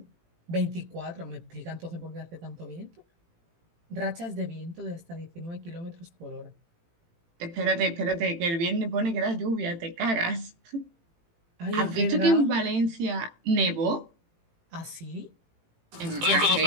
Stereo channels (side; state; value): left; late; 18 ms